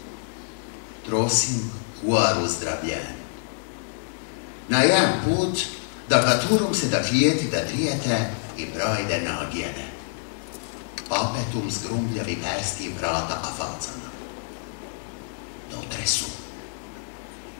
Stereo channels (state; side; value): silent; right; digital silence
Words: Trosim kuaru zdravljen. Na jedan put da gaturum se da klijeti da drijete i brojde nagijene. Apetum zgrumljavi persti vrata afalcana. Dotre su.